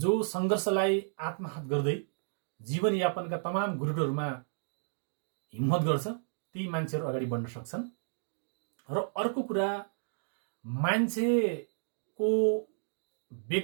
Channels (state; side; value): silent; left; digital silence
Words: जो संघर्षलाई आत्मसात गर्दै जीवनयापनका तमाम गुरुटहरूमा हिम्मत गर्छ, ती मान्छेहरू अगाडि बढ्न सक्छन्। र अर्को कुरा, मान्छेको